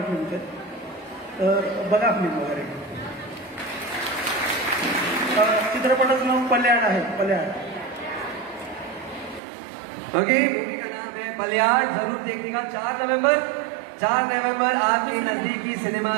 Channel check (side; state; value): left; drops out; at 9.4 s